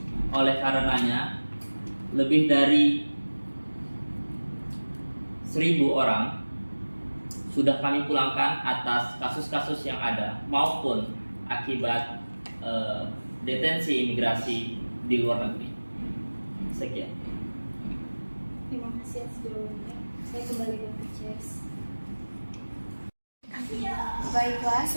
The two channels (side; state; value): both; inverted; correlation -1.00